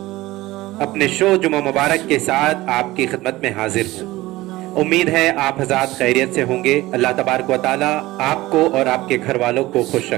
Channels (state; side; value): quieter; left; 18.3 dB